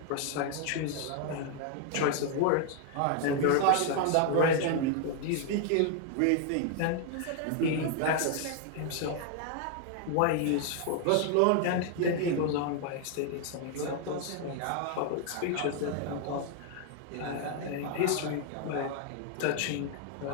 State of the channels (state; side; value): different; both; correlation 0.00